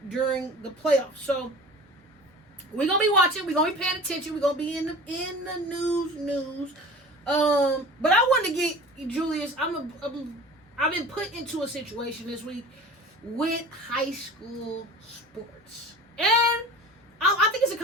during the playoffs. So, we're going to be watching. We're going to be paying attention. We're going to be in the news. But I wanted to get, Julius, I've been put into a situation this week with high school sports. And I think it's a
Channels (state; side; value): normal; both; correlation 0.40